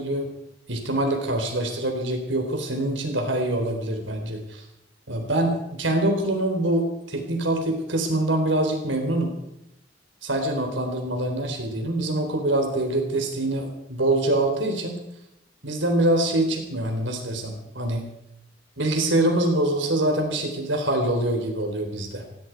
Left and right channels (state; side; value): normal; both; correlation 0.25